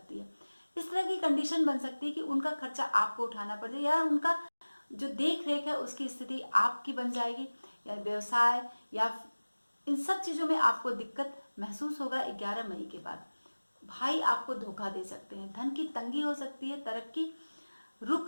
है। इस तरह की कंडीशन बन सकती है कि उनका खर्चा आपको उठाना पड़ जाए, या उनका जो देख रेख है उसकी स्थिति आपकी बन जाएगी, या व्यवसाय या इन सब चीज़ों में आपको दिक्कत महसूस होगा। 11 मई के बाद भाई आपको धोखा दे सकते हैं, धन की तंगी हो सकती है, तरक्की रुक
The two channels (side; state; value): both; inverted; correlation -1.00